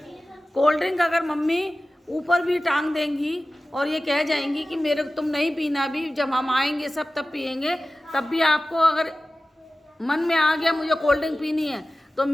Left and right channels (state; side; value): normal; both; correlation 0.96